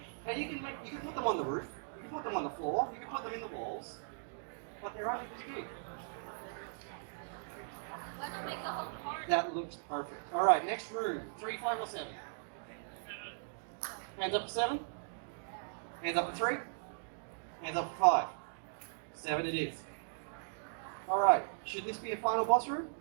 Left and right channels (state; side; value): silent; left; digital silence